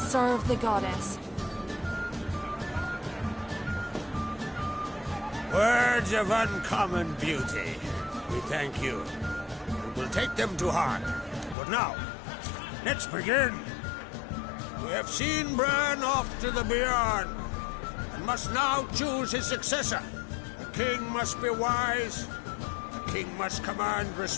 the goddess. Words of uncommon beauty. We thank you. And we'll take them to heart. But now, let's begin. We have seen Bran off to the Beyond, and must now choose his successor. A king must be wise. A king must command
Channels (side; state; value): right; drops out; at 11.6 s